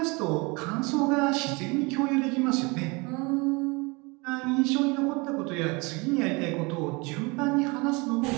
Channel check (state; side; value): quieter; left; 27.3 dB